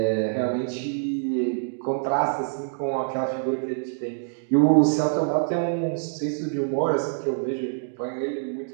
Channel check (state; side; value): silent; left; digital silence